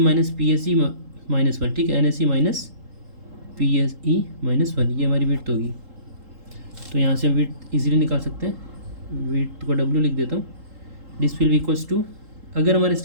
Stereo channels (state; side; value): late; left; 3.8 ms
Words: PSE माइनस 1, ठीक है, NSE माइनस PSE माइनस 1, ये हमारी विड्थ होगी। तो यहाँ से हम विड्थ इजीली निकाल सकते हैं, विड्थ को W लिख देता हूँ, this will be equals to, अगर हमारा